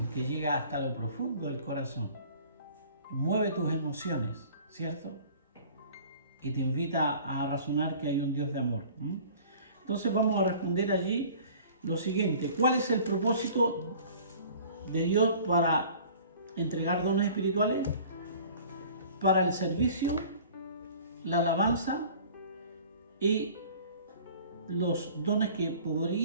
que llega hasta lo profundo del corazón. Mueve tus emociones, ¿cierto? Y te invita a razonar que hay un Dios de amor. Entonces vamos a responder allí lo siguiente. ¿Cuál es el propósito de Dios para entregar dones espirituales? Para el servicio, la alabanza y los dones que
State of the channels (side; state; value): both; inverted; correlation -0.48